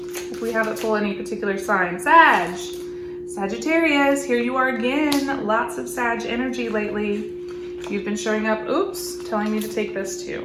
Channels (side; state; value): both; identical; correlation 1.00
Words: if we haven't pulled any particular sign. Sagittarius, here you are again. Lots of Sag energy lately. You've been showing up, oops, telling me to take this too.